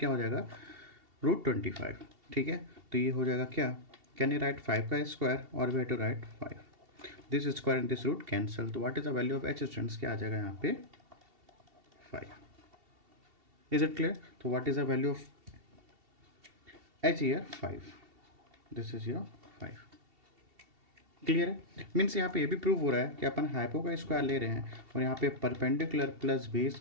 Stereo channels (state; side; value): late; left; 2.7 ms